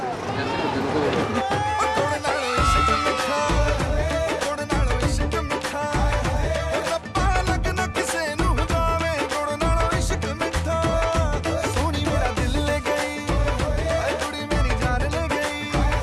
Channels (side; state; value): both; identical; correlation 1.00